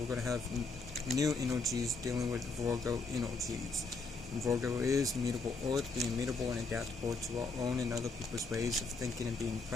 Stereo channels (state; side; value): quieter; right; 3.9 dB